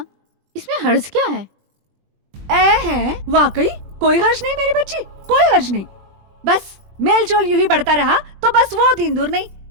इसमें हर्ज क्या है? है वाकई कोई हर्ज नहीं मेरी बच्ची, कोई हर्ज नहीं। बस मेल जोल यूं ही बढ़ता रहा तो बस वो दिन दूर नहीं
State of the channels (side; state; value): left; late; 20 ms